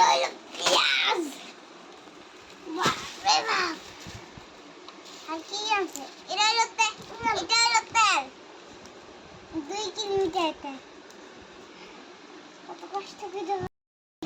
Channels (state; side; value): identical; both; correlation 1.00